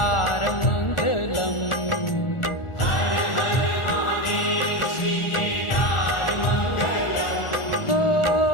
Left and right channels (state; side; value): late; right; 1.4 ms